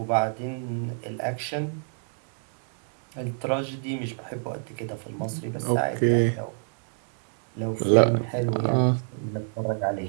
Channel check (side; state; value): left; silent; 60 dB below the other